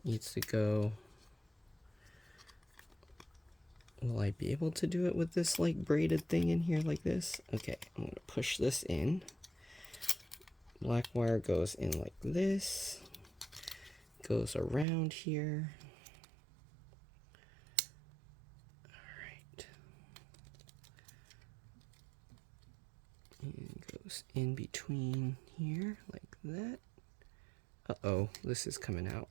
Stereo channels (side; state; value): left; drops out; at 14.9 s